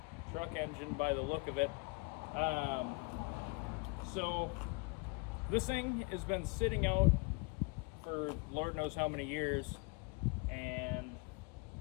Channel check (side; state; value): right; quieter; 27.8 dB